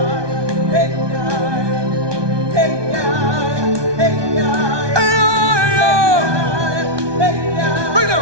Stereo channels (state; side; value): late; left; 1.2 ms